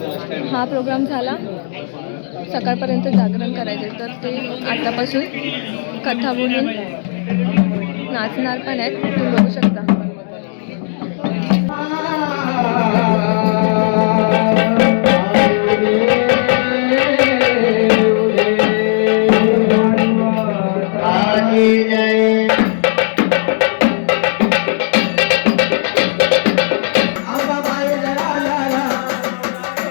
हा प्रोग्राम झाला, सकाळपर्यंत जागरण करायचे, तर ते आतापासून कथा बोलून नाचणार पण आहेत. तुम्ही बघू शकता.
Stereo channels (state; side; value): silent; right; digital silence